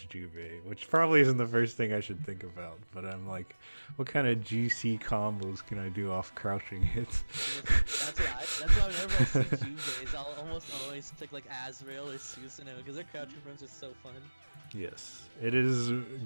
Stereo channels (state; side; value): inverted; both; correlation -1.00